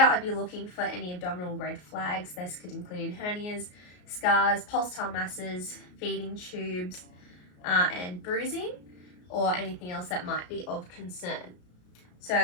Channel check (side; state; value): right; late; 33 ms